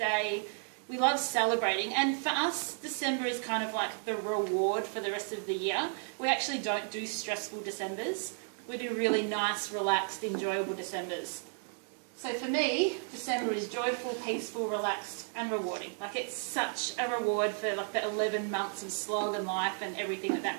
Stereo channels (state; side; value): silent; left; 56 dB below the other